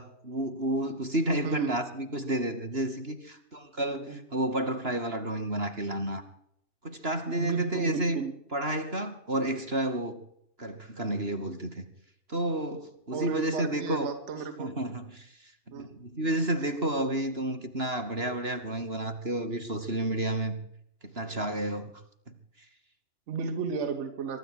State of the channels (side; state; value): left; late; 2.9 ms